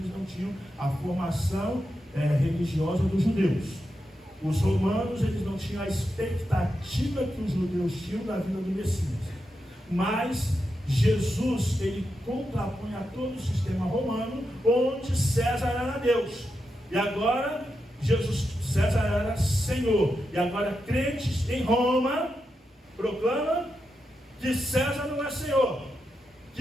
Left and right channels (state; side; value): normal; both; correlation 0.87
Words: não tinham a formação religiosa dos judeus. Os romanos eles não tinham a expectativa que os judeus tinham da vinda do Messias. Mas Jesus, ele contrapõe a todo o sistema romano, onde César era Deus. E agora, César era Senhor. E agora, crentes em Roma, proclamam que César não é Senhor,